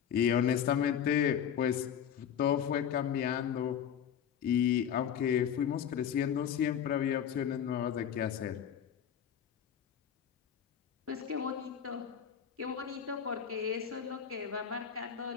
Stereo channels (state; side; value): quieter; right; 8.7 dB